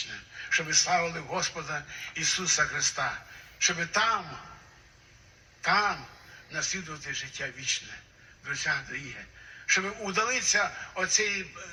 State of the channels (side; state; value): both; identical; correlation 1.00